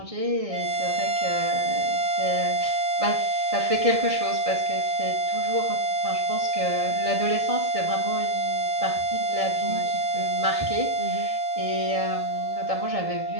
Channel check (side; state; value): left; late; 1.6 ms